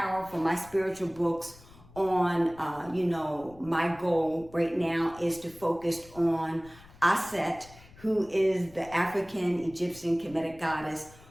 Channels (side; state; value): left; noise; rumble, 23 dB below the sound